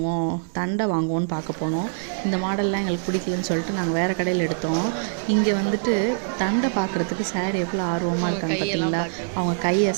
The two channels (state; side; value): silent; left; digital silence